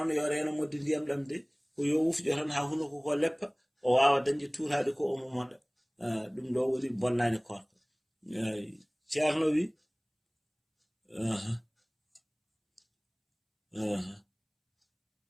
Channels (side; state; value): both; identical; correlation 1.00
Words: yo reno modde ndiyam ɗam de ko yo wufƴo tan ha hunuko ko leppa o wawa dañde tuurade ko omo moɗa ɗum ɗo woni bonnani korka ceerno wi